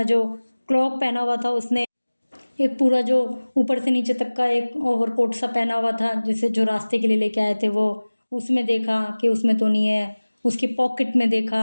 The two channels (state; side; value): inverted; both; correlation -1.00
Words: जो क्लॉक पहना हुआ था उसने, एक पूरा जो ऊपर से नीचे तक का एक ओवरकोट सा पहना हुआ था जिसे जो रास्ते के लिए लेके आए थे, वो उसमें देखा कि उसमें तो नहीं है। उसकी पॉकेट में